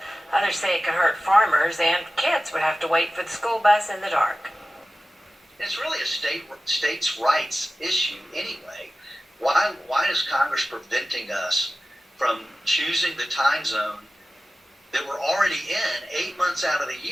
Others say it could hurt farmers, and kids would have to wait for the school bus in the dark. It's really a states' rights issue anyway. Why is Congress preventing us from choosing the time zone that we're already in 8 months out of the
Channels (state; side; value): normal; both; correlation 0.95